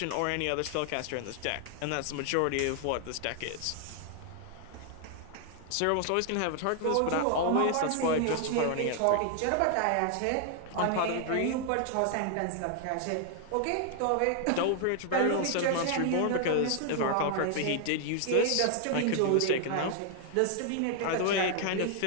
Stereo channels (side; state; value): both; different; correlation 0.00